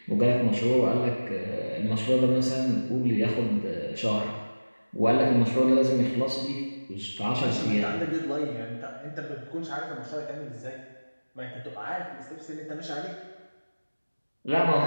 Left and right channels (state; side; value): inverted; both; correlation -1.00